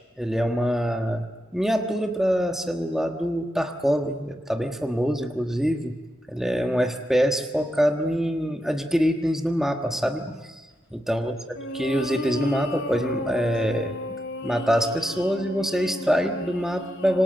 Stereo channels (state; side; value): normal; both; correlation 0.85